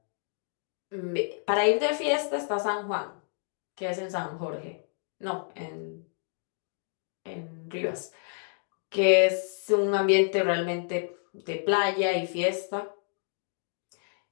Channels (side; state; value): right; silent; digital silence